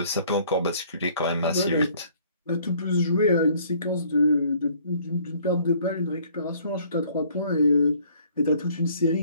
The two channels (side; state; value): both; inverted; correlation -0.59